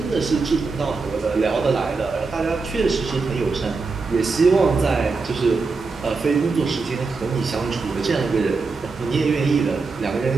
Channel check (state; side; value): quieter; left; 4.2 dB